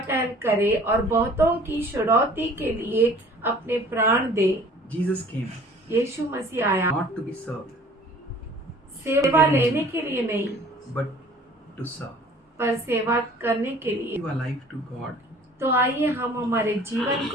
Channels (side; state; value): both; normal; correlation 0.50